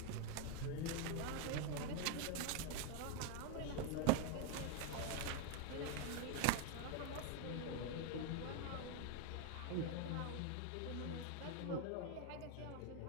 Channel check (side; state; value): both; different; correlation 0.01